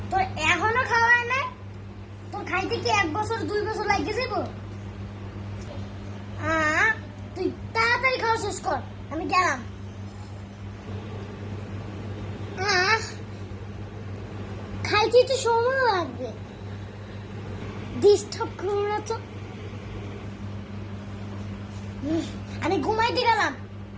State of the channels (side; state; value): both; identical; correlation 1.00